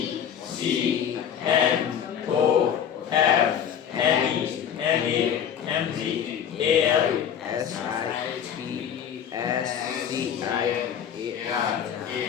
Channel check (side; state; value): right; quieter; 8.7 dB